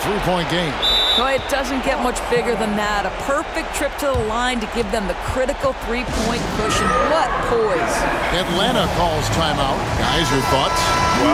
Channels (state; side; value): identical; both; correlation 1.00